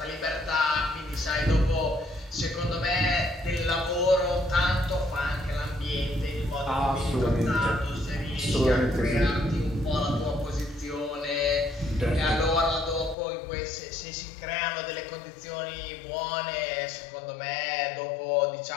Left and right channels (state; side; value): drops out; right; at 13.2 s